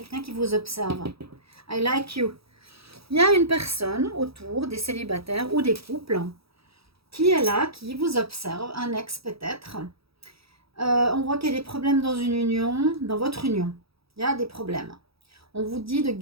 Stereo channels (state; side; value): late; left; 0.77 ms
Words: qui vous observe. I like you. Il y a une personne autour des célibataires ou des couples qui est là, qui vous observe. Un ex peut-être. On voit qu'il y a des problèmes dans une union, dans votre union. Il y a des problèmes. On vous dit de